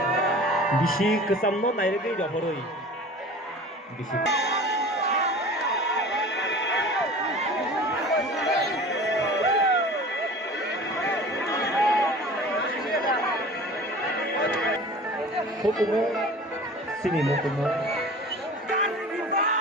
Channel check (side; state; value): both; normal; correlation 0.41